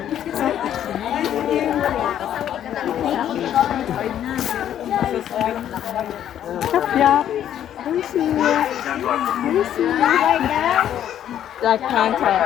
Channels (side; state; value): right; quieter; 10.6 dB